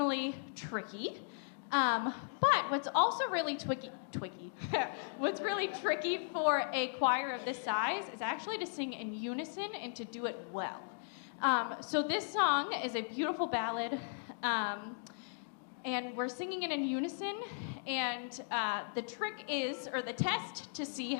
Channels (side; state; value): right; silent; digital silence